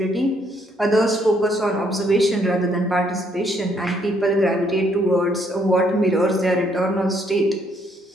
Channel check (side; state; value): both; normal; correlation 0.70